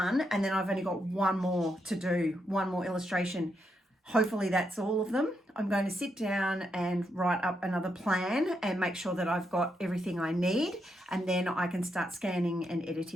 And then I've only got one more to do, one more illustration. Hopefully that's all of them. I'm going to sit down and write up another plan and make sure that I've got everything I need, and then I can start scanning and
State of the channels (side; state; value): both; normal; correlation 0.81